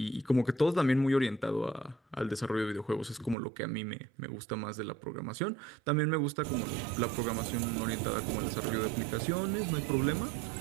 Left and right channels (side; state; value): left; drops out; at 3.4 s